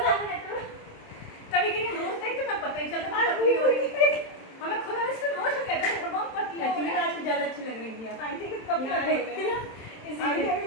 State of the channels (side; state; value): right; late; 27 ms